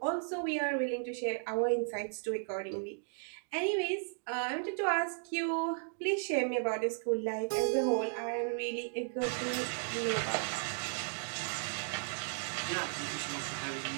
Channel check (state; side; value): silent; left; digital silence